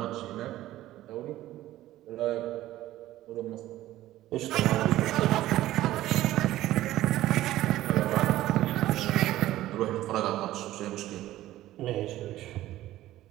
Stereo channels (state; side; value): quieter; left; 14.8 dB